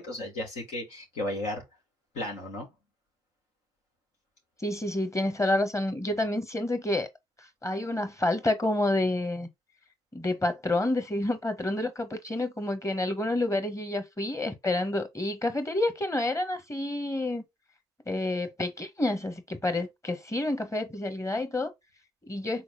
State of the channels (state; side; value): normal; both; correlation 0.80